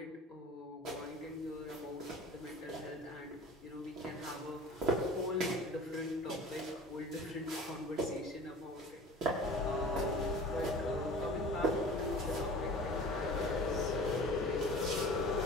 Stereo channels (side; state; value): both; normal; correlation 0.40